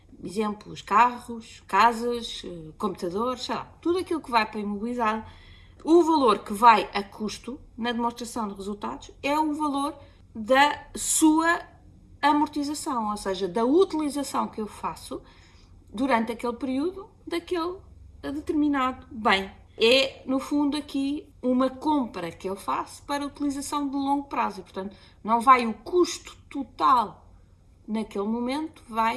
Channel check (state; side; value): identical; both; correlation 1.00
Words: Exemplos, carros, casas, computadores, sei lá, tudo aquilo que vai para imobilizado. O valor que vai a custo na demonstração de resultados é o valor da sua amortização, ou seja, da utilização que eu faço durante aquele período daquele determinado bem. É, no fundo, aqui uma compra que eu faço para utilização de longo prazo e, portanto, não vai o custo total naquele momento,